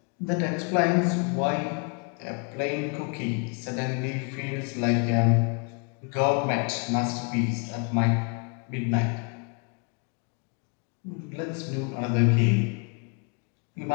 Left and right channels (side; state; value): right; quieter; 37.0 dB